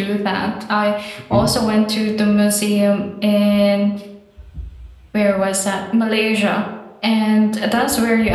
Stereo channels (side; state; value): both; identical; correlation 1.00